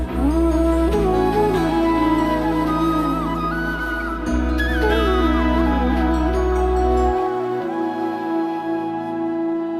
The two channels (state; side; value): identical; both; correlation 1.00